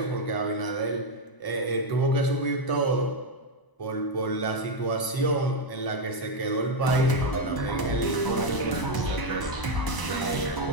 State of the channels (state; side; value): late; right; 1.0 ms